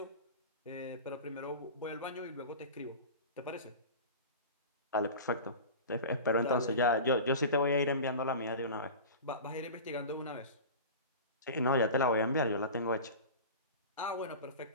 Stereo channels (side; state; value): both; inverted; correlation -0.32